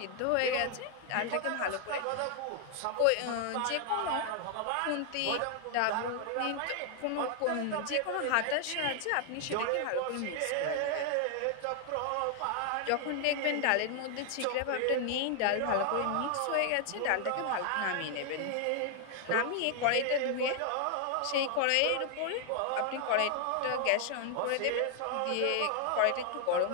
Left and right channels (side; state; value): both; different; correlation 0.00